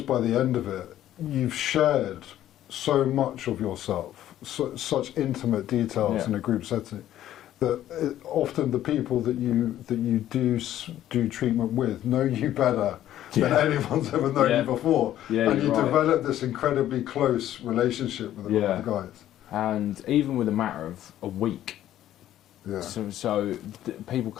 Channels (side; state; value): right; quieter; 12.5 dB